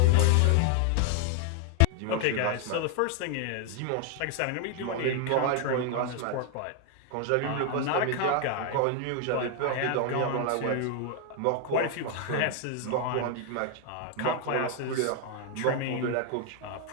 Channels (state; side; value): different; both; correlation 0.00